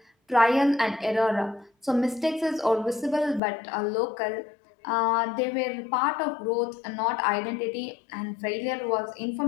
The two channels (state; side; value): drops out; right; at 3.4 s